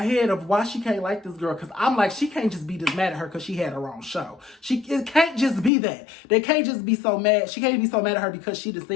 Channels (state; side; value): drops out; right; at 5.7 s